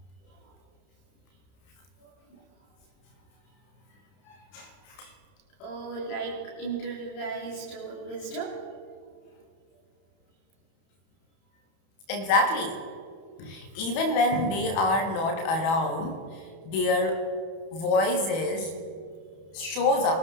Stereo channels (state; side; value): late; right; 31 ms